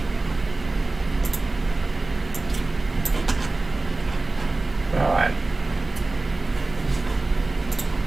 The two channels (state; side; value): quieter; left; 3.2 dB